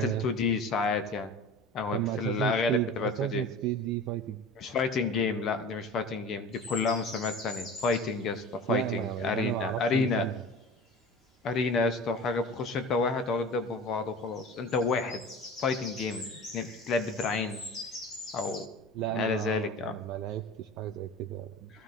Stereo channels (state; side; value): normal; both; correlation 0.37